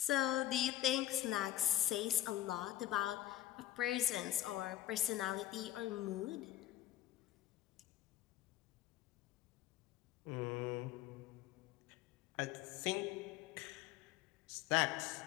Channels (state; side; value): quieter; right; 13.4 dB